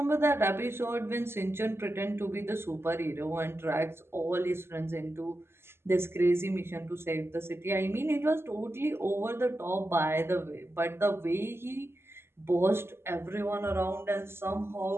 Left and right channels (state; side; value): late; left; 0.12 ms